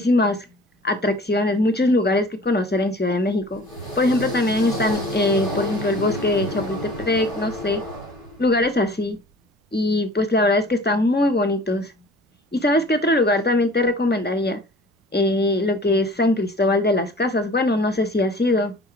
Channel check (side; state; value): both; normal; correlation 0.46